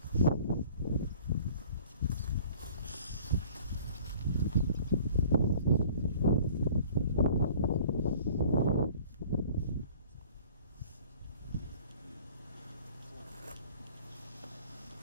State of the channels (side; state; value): both; inverted; correlation -0.50